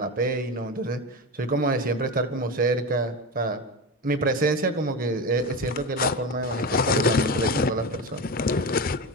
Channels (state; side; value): normal; both; correlation 0.21